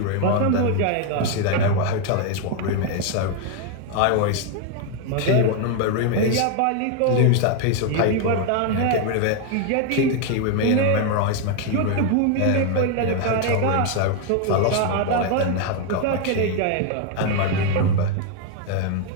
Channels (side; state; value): both; different; correlation 0.01